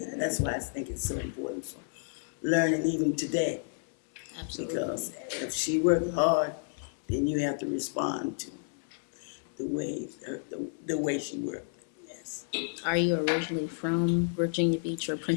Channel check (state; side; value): silent; right; digital silence